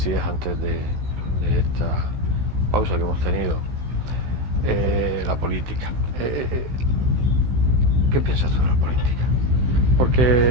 antes de esta pausa que hemos tenido, la política. ¿Qué piensas tú de la política?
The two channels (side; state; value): left; late; 16 ms